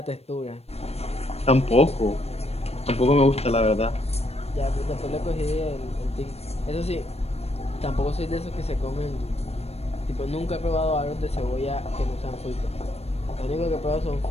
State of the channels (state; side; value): late; right; 0.30 ms